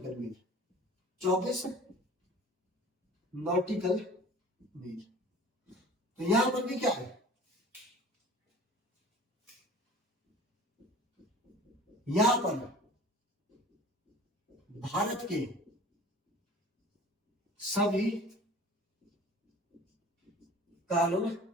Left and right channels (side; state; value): both; normal; correlation 0.43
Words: मील। 24 नॉटिकल मील। तो यहां पर भी क्या है? यहां पर भारत के सभी कानून